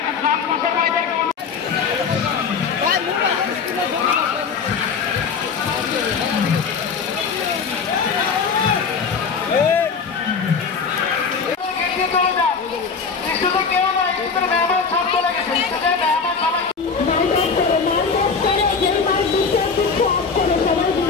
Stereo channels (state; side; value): quieter; right; 5.5 dB